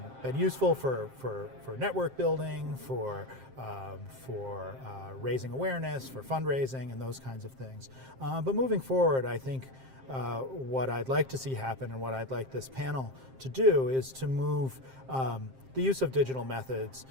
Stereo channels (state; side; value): late; left; 7.6 ms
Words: useful for network building, for raising awareness, for fundraising, and those kinds of things. But moving forward, I think what I'd like to see happen and what I'd like this panel to do is to move the use of digital methods